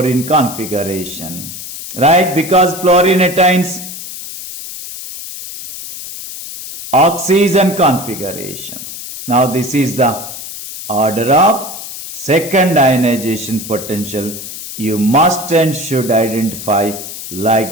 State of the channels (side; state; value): left; noise; hiss, 10 dB below the sound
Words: configuration, right? Because fluorine attains oxygen configuration. Now this is the order of second ionization potential. You must and should identify